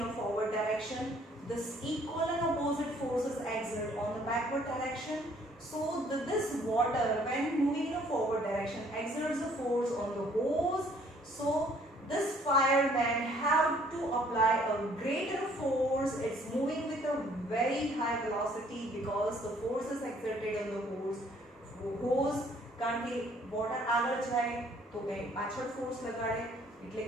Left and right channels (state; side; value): normal; both; correlation 0.61